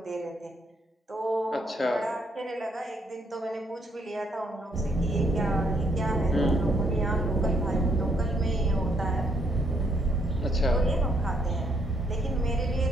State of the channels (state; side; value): normal; both; correlation 0.72